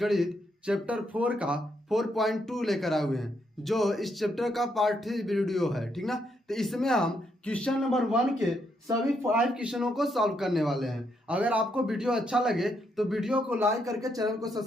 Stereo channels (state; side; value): normal; both; correlation 0.77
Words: गणित चैप्टर 4 का 4.2 लेकर आए हुए हैं, जो इस चैप्टर का पार्ट 3 वीडियो है। ठीक ना। तो इसमें हम क्वेश्चन नंबर 1 के सभी 5 क्वेश्चनों को सॉल्व करने वाले हैं। अगर आपको वीडियो अच्छा लगे तो वीडियो को लाइक करके चैनल को